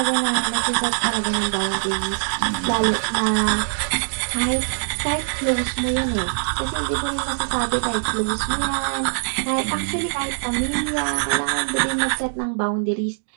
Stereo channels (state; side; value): silent; left; digital silence